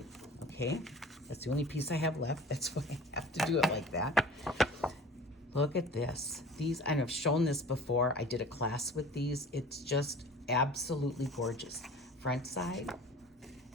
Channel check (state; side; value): normal; both; correlation 0.43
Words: okay? That's the only piece I have left. That's why I have to do it like that. Look at this. These, I've shown this before. I did a class with these. It's just absolutely gorgeous. Front side,